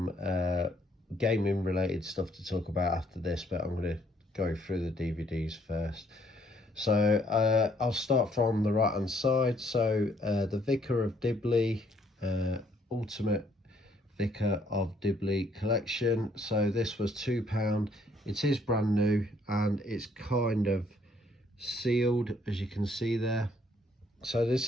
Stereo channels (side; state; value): both; normal; correlation 0.66